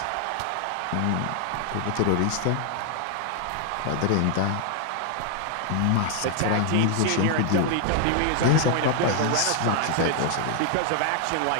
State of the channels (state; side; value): different; both; correlation 0.00